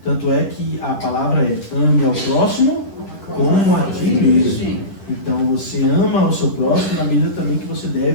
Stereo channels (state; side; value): late; right; 10 ms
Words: Tanto é que a palavra é ame ao próximo como a ti mesmo. Então você ama o seu próximo na medida também que você